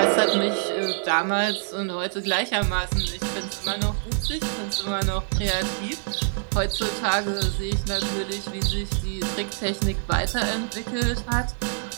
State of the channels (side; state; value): left; silent; 61 dB below the other